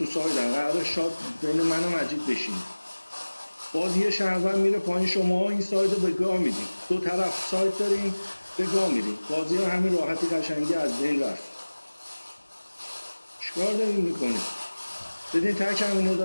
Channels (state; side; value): inverted; both; correlation -1.00